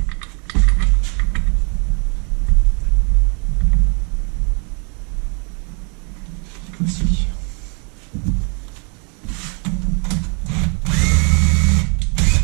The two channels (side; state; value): left; quieter; 37.0 dB